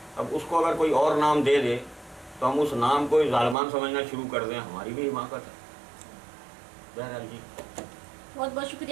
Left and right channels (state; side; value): drops out; left; at 3.6 s